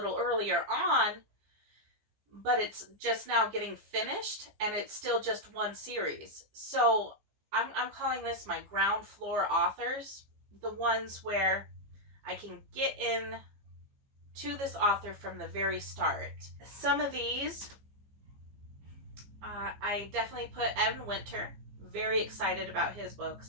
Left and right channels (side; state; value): left; late; 15 ms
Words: earlier on, but it's just now getting finished and it's still just one series. So I'm calling this my ground floor authors, the ones where I can get in to this author from the very start. Some of these, I definitely put Evan Winter, very excited about his